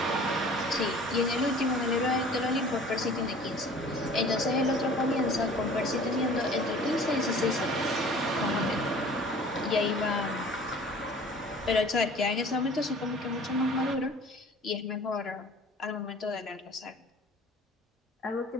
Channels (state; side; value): normal; both; correlation 0.47